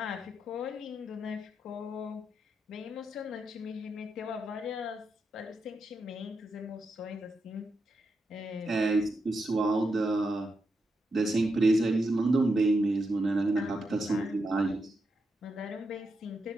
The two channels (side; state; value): both; normal; correlation 0.85